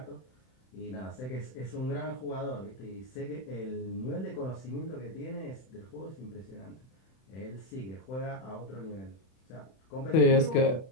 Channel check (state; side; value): late; right; 31 ms